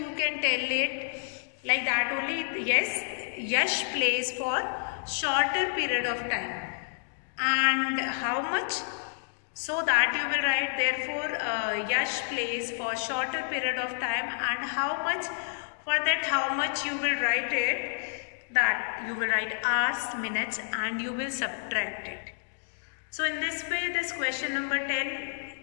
can tell it like that only. Yes, Yash plays for shorter period of time. And how much? So that you will write, therefore Yash plays for shorter period of time, and how much? For that how much you will write it, that you will write hours, minutes, and you will subtract it. So in this way this question number 10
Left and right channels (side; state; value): right; silent; digital silence